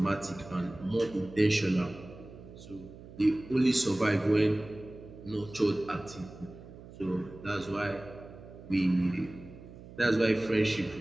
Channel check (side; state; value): right; noise; hum, 17 dB below the sound